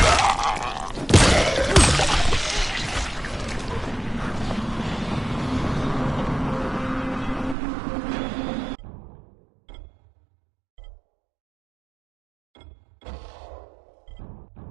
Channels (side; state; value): left; drops out; at 7.6 s